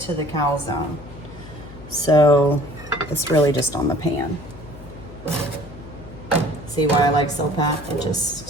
So it's really just on the pan. See why I like Silpat? It just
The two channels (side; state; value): left; noise; hum, 17 dB below the sound